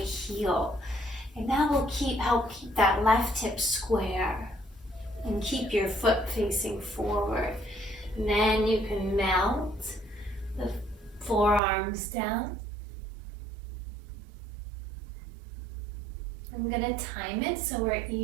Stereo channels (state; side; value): drops out; left; at 11.6 s